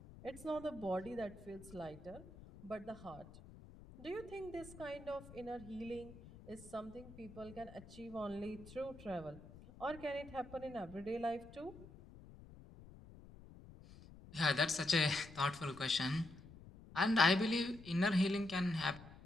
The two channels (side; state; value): left; noise; rumble, 18 dB below the sound